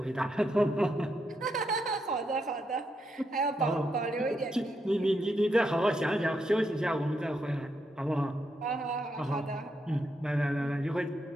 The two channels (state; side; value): normal; both; correlation 0.81